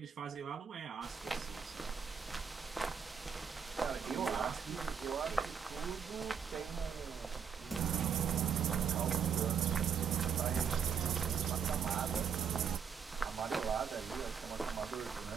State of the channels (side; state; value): left; quieter; 7.0 dB